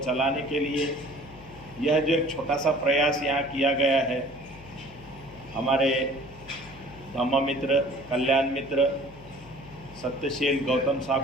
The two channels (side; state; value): left; noise; hum, 20 dB below the sound